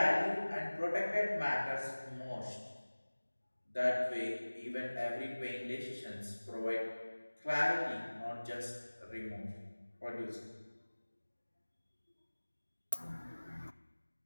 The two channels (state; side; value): inverted; both; correlation -1.00